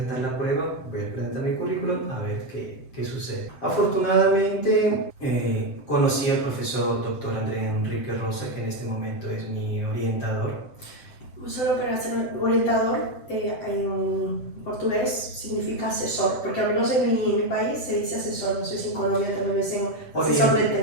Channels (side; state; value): right; late; 7.7 ms